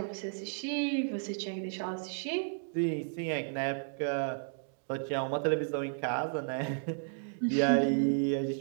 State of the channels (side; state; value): left; silent; digital silence